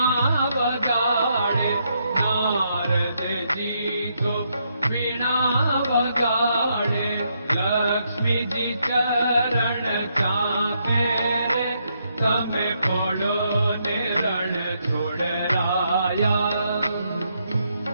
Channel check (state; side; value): inverted; both; correlation -0.77